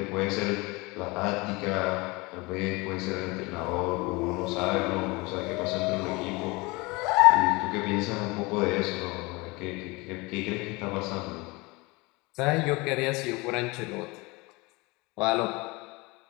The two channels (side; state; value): right; quieter; 24.8 dB